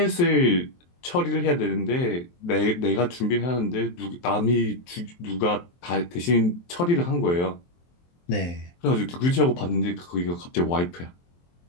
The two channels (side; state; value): right; late; 23 ms